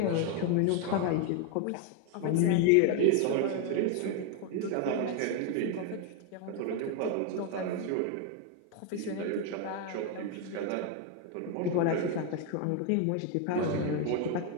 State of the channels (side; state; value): both; different; correlation 0.01